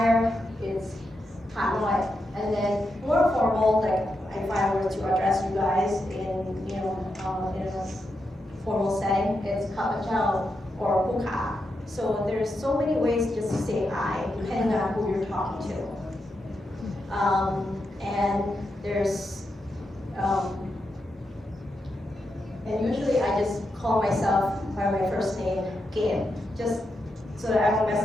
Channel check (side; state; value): both; normal; correlation 0.85